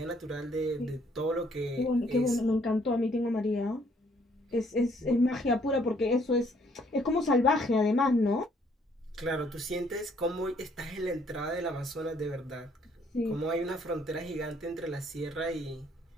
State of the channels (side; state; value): both; normal; correlation 0.65